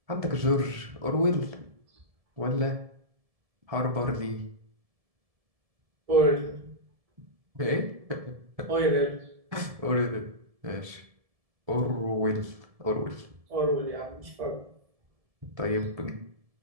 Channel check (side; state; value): left; late; 1.7 ms